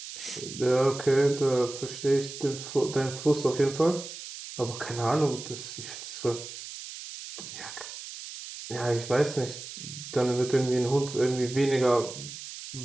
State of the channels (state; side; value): noise; right; hiss, 11 dB below the sound